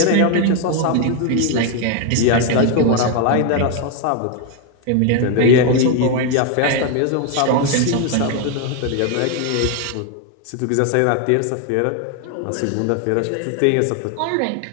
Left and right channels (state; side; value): different; both; correlation 0.01